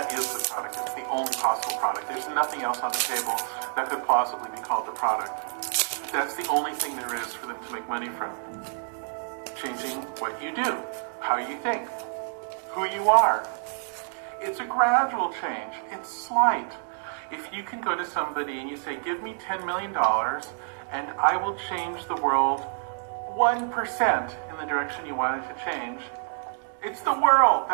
is the product. It's the only possible product. There's nothing else on the table that could plausibly be called the product. That's the only thing there is for them to make money from. Changing what you do, how you think, who you are. It's a gradual change. It's slight. If you can go to somebody and you say, give me $10 million and I will change the world 1% in the direction you want it to change, it's the world.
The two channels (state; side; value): silent; left; digital silence